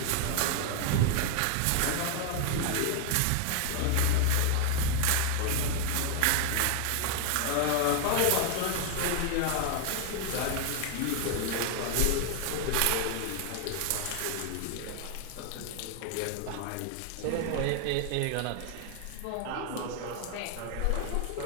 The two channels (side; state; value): both; different; correlation 0.00